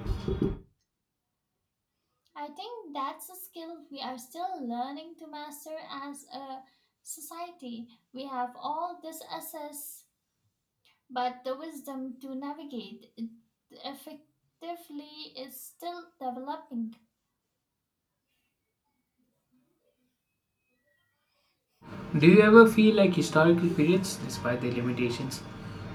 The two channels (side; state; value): both; identical; correlation 1.00